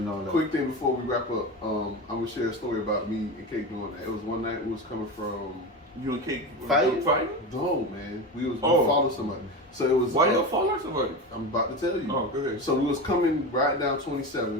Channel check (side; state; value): both; normal; correlation 0.23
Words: all that. Quick thing before we wrap up, I'm gonna share a story about me and Kate doing that. It was one night we was coming from You and Kate Fighting? no man. We followed somebody. So it was Why y'all follow somebody? I'm about to tell you. Oh, go ahead. So we was coming right down